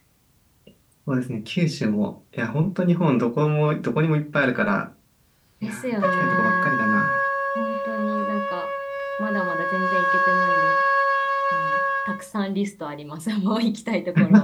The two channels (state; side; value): identical; both; correlation 1.00